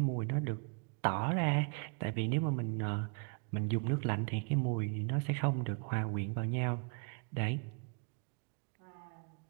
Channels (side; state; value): left; quieter; 38.1 dB